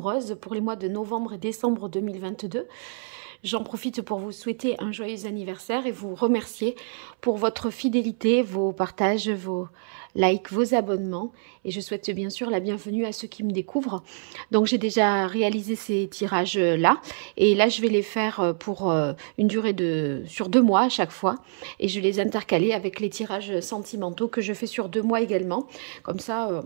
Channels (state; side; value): silent; left; 61 dB below the other